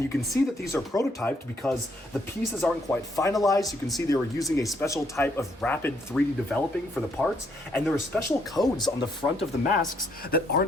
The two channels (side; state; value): both; normal; correlation 0.71